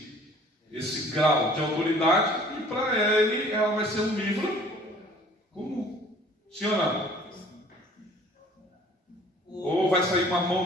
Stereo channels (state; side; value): normal; both; correlation 0.52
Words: grau de autoridade, e para ele ela vai ser um livro comum. Sim ou não? Ou vai sair uma mão